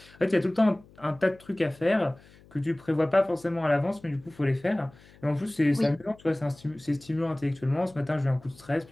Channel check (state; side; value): noise; left; hum, 25 dB below the sound